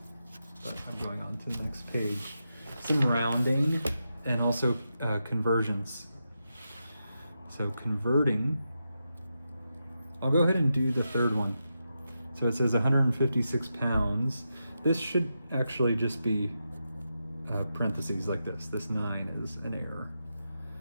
but I'm going on to the next page. Some rounding and also conversions. So converting, I'll go ahead and do the third one. So it says 156 pounds. This should actually just be parentheses like this. This 9 is an error.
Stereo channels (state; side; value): inverted; both; correlation -0.87